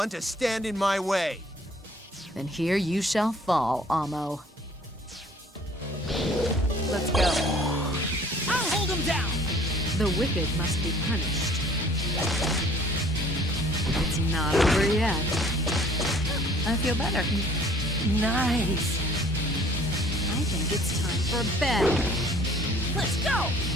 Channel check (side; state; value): both; normal; correlation 0.55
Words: to stand in my way. Then here you shall fall, Amo. Let's go. I'll hold him down! The wicked must be punished. It's not over yet. I feel better. Nice. I think it's time for bed. Let's go!